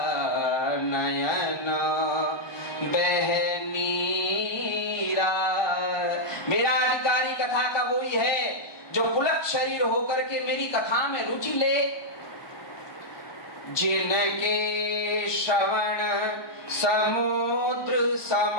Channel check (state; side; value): late; right; 1.2 ms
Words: नयन बहनीरा। मेरा अधिकारी कथा का वही है जो पुलक शरीर होकर के मेरी कथा में रुचि ले, जिनके श्रवण समुद्र